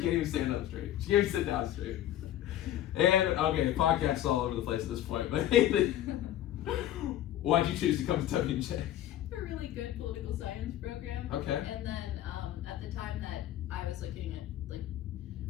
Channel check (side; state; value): right; quieter; 12.5 dB